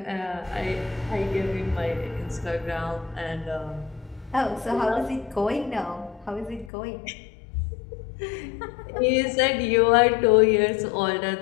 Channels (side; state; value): right; drops out; at 6.7 s